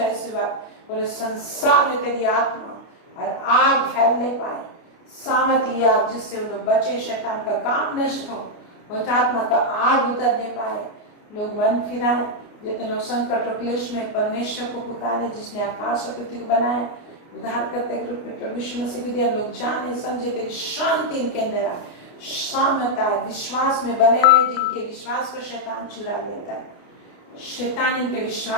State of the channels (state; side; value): late; right; 29 ms